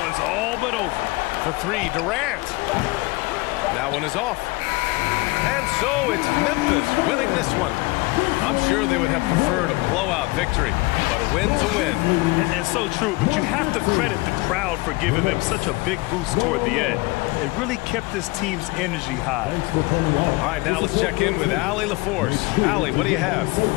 all but over. For 3, Durant. That one is off. And so it's Memphis winning this one. I'm sure they would have preferred a blowout victory, but a win's a win. And so true, but you have to credit the crowd for giving them such a big boost toward the end. It really kept this team's energy high. All right, now let's check in with Allie LaForce. Allie, what do you have?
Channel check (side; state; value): right; quieter; 23.7 dB